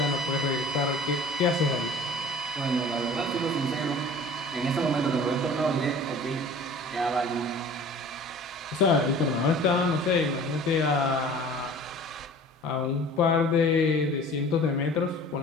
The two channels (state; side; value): normal; both; correlation 0.45